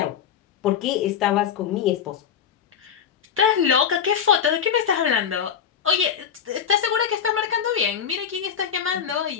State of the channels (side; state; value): right; quieter; 7.9 dB